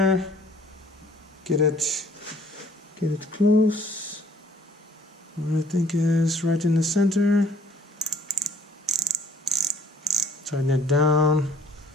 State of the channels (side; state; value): both; normal; correlation 0.57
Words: get it close. What I think is right in the center. Tighten it down.